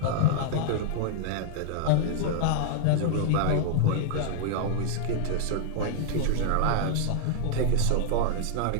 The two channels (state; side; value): different; both; correlation -0.01